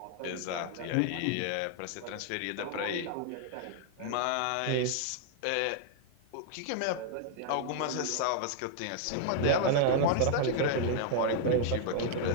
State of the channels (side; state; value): both; different; correlation 0.00